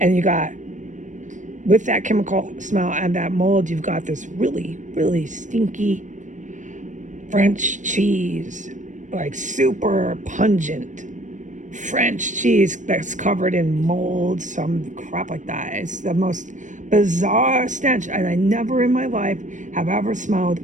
you got, with that chemical smell and that mold, you've got this really, really stinky French cheese, like super pungent French cheese that's covered in mold, some crap like that. It's the most bizarre stench, and I never in my life have ever smelled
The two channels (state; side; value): late; left; 0.36 ms